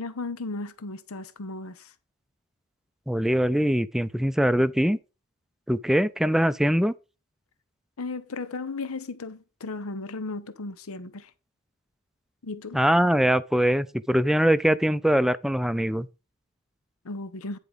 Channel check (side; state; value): both; normal; correlation 0.92